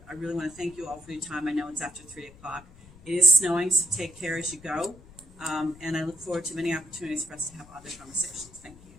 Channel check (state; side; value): noise; left; rumble, 22 dB below the sound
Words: I really want to thank you all for your time. I know it's after 3:00. It is snowing, so take care as you go. And I look forward to many opportunities for us to have other conversations. Thank